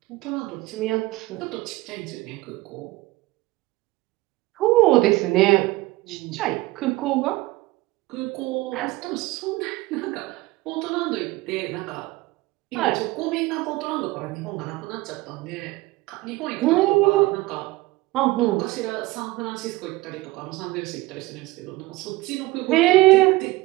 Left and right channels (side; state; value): left; quieter; 19.6 dB